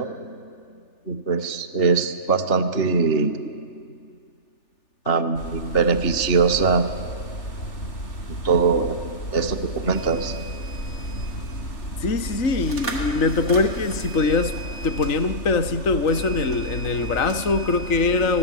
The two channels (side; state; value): right; late; 3.4 ms